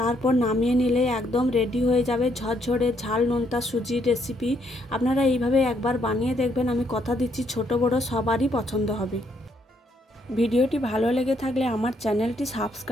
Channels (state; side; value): normal; both; correlation 0.72